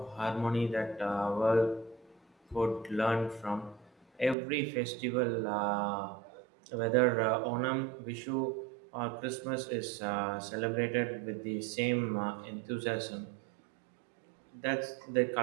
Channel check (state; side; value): drops out; left; at 4.4 s